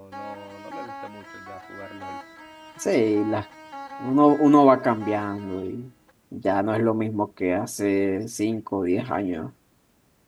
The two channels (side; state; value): both; identical; correlation 1.00